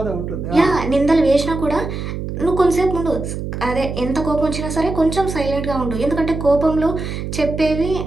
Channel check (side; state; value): right; noise; hum, 6 dB below the sound